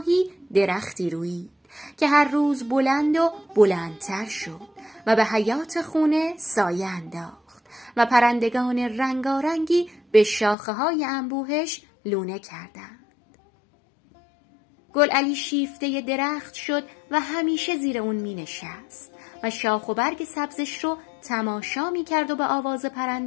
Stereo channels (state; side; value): drops out; right; at 10.6 s